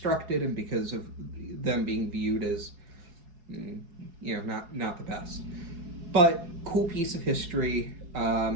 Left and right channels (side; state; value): left; late; 4.7 ms